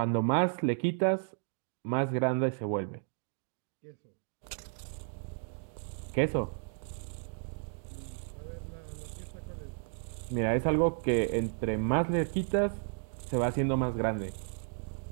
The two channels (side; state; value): left; silent; digital silence